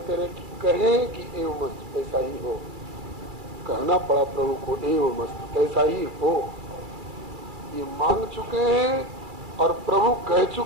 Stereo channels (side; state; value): left; late; 2.3 ms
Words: रहे कि कहें कि एवं मस्त ऐसा ही हो। कहना पड़ा प्रभु को एवं मस्त ऐसा ही हो। ये मांग चुके हैं और प्रभु कह